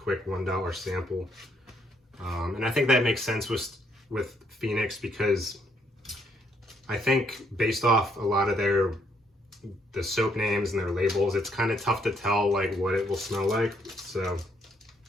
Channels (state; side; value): normal; both; correlation 0.71